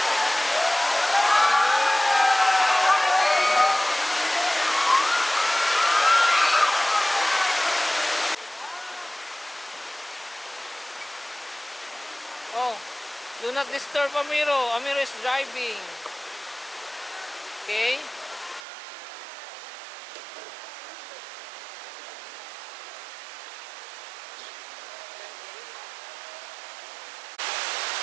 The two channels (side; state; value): left; drops out; at 18.7 s